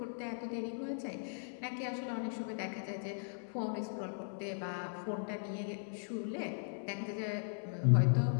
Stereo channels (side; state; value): right; silent; 52 dB below the other